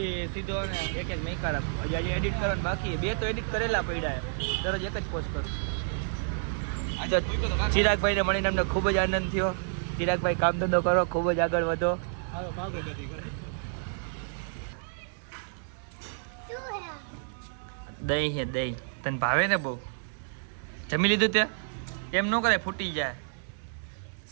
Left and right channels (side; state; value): left; silent; digital silence